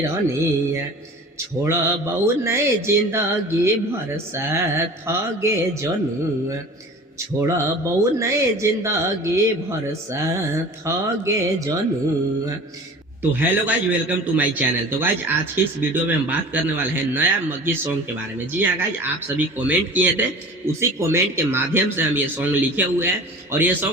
रनिया छोड़बौ नहीं जिंदगी भर साथ गे जनुआ छोड़बौ नहीं जिंदगी भर साथ गे जनुआ। तो hello guys, welcome to my channel. तो गाइज आज की इस वीडियो में हम बात करने वाले हैं नया मग्गी सॉन्ग के बारे में। जी हाँ गाइज, आप सभी कमेंट किए थे, उसी कमेंट के माध्यम से हम ये सॉन्ग लिखे हुए हैं और ये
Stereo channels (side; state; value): both; normal; correlation 0.40